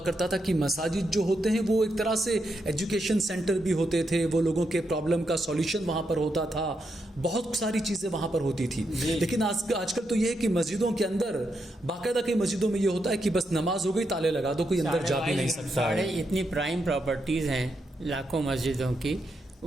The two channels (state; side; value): normal; both; correlation 0.82